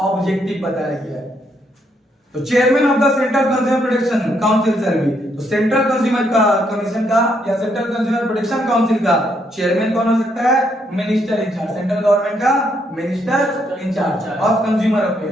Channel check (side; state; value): both; normal; correlation 0.74